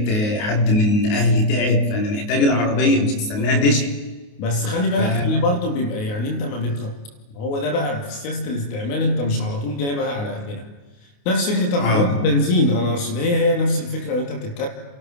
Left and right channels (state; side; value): late; right; 28 ms